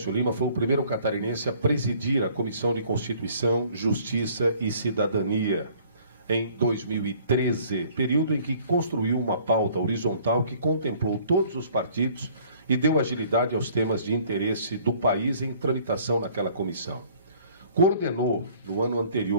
Lima foi o primeiro catarinense a presidir a Comissão de Constituição, Justiça e Cidadania em 2013, período em que construiu uma pauta horizontal que contemplou todos os partidos e deu agilidade aos temas de interesse do país em tramitação naquela comissão. Coordenou, no ano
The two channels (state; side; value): inverted; both; correlation -0.56